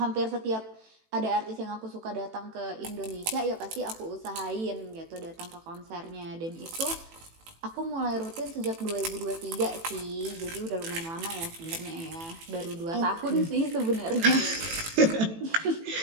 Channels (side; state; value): left; late; 18 ms